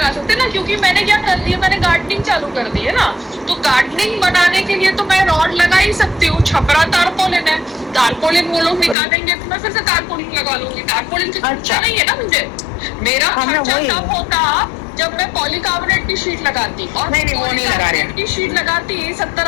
सकते ना, क्योंकि मैंने क्या कर दिया, मैंने गार्डनिंग चालू कर दी है ना। तो गार्डनिंग बनाने के लिए तो मैं रॉड लगा ही सकती हूँ। छपरा तारपोलिन है, तारपोलिन वो लोग निकालेंगे तो मैं फिर से तारपोलिन लगा लूंगी। तारपोलिन का खर्चा नहीं है ना मुझे, मेरा खर्चा तब होता जब मैं पॉलीकार्बोनेट की शीट लगाती, और वो नहीं लगा रहे की शीट लगाती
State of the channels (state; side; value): drops out; right; at 9.0 s